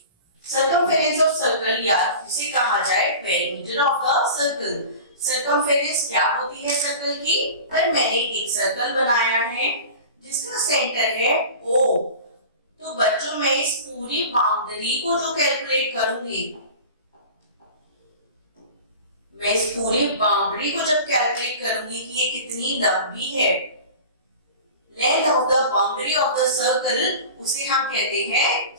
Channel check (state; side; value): inverted; both; correlation -0.37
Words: circumference of circle या जिसे कहा जाए perimeter of the circle. Circumference क्या होती है सर्कल की, अगर मैंने एक सर्कल बनाया है जिसका सेंटर है O, तो बच्चों मैं इस पूरी बाउंड्री को जो कैलकुलेट करूंगी, मैं इस पूरी बाउंड्री को जब कैलकुलेट करूंगी कि ये कितनी लंबी है, length of the boundary of the circle, उसे हम कहते हैं